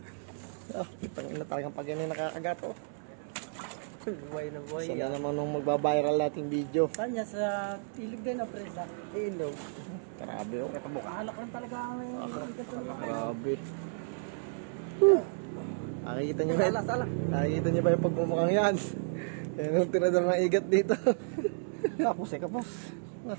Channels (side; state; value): left; silent; digital silence